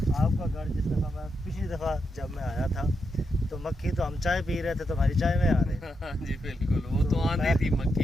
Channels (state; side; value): normal; both; correlation 0.84